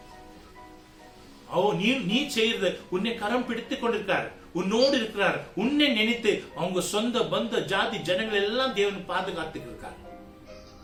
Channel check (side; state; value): both; identical; correlation 1.00